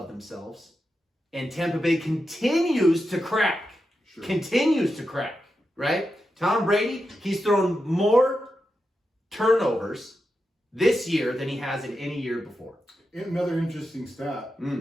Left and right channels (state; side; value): normal; both; correlation 0.88